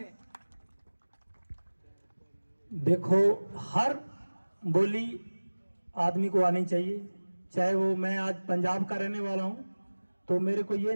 देखो, हर बोली आदमी को आनी चाहिए, चाहे वो, मैं आज पंजाब का रहने वाला हूं तो मेरे को ये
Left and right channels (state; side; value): inverted; both; correlation -1.00